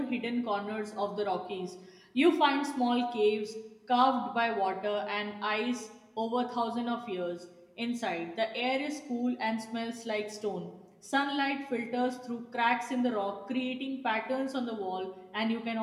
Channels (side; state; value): both; identical; correlation 1.00